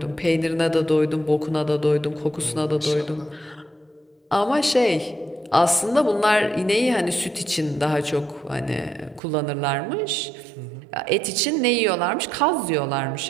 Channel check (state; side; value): drops out; left; at 9.2 s